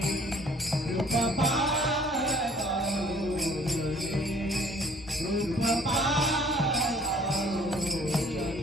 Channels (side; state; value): both; normal; correlation 0.56